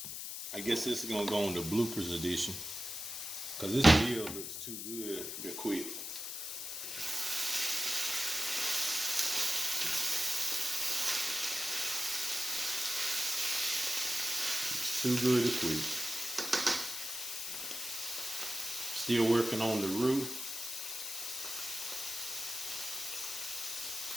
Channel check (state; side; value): noise; left; hiss, 6 dB below the sound